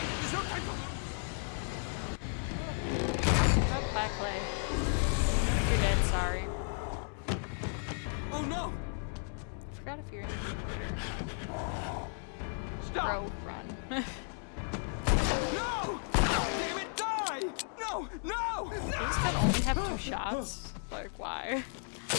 There's no time for... Oh, back Clay. You're dead, sorry. Oh no! I forgot if you're in the Stop! Bro, run. No! Damn it, die! No! No! These No! can only have 2 shots? Like, why?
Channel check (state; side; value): silent; right; 55 dB below the other